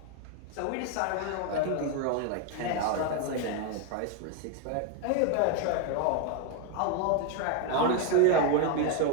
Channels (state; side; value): different; both; correlation 0.01